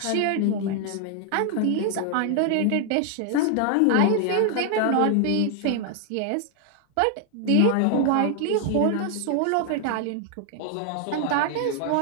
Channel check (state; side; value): different; both; correlation 0.00